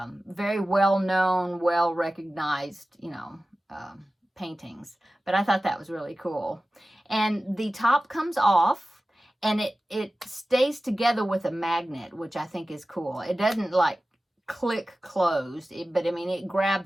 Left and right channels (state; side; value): normal; both; correlation 0.95